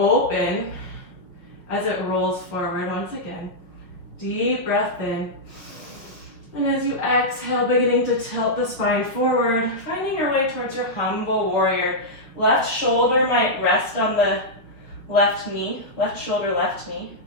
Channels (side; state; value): right; late; 5.6 ms